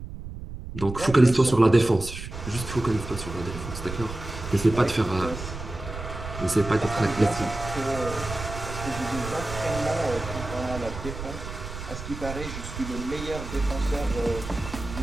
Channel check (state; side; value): noise; right; rumble, 9 dB below the sound